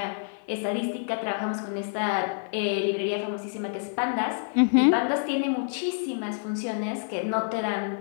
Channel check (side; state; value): right; silent; 60 dB below the other